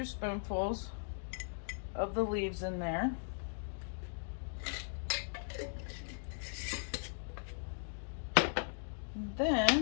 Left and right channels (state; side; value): silent; right; digital silence